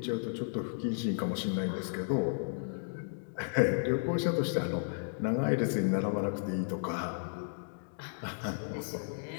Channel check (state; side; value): silent; right; digital silence